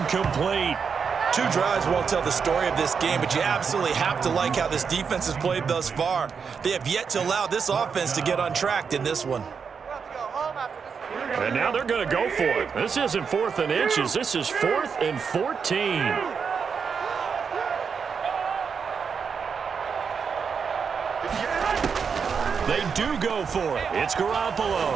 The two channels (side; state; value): left; quieter; 6.1 dB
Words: 2 drives won't tell the story of this game, but you absolutely have to like how this defense has played thus far. They have yet to allow this offense to get untracked in this one. And now they're going to go for it. This isn't 4th and inches. This is 4th and 14. They do go for it. It's Garoppolo